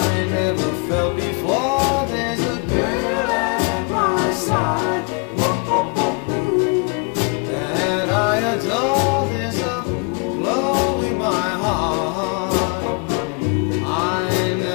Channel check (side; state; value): right; quieter; 34.9 dB